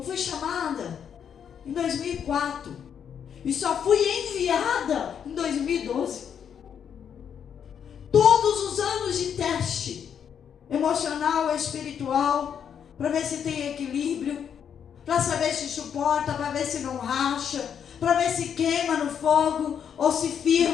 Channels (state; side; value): quieter; right; 8.1 dB